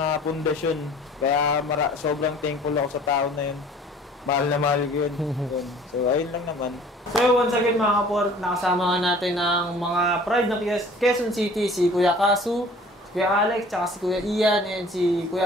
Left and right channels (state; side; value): normal; both; correlation 0.49